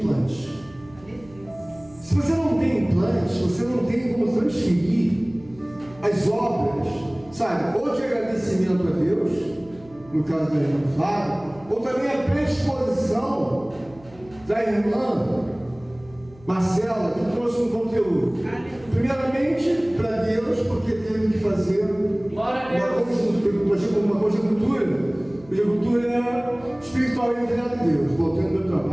Se você não tem implantes, você não tem como transferir as obras, sabe, ou de agradecimento a Deus, no caso da irmã Flávia, ou também a predisposição da irmã Marcela, que trouxe um conteúdo. Primeiramente, para Deus, porque teve que fazer uma conjuntura espiritual entre ela e Deus. Voltando meu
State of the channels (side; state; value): right; noise; hum, 24 dB below the sound